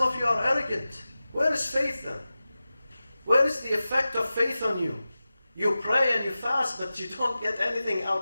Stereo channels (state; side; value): inverted; both; correlation -0.95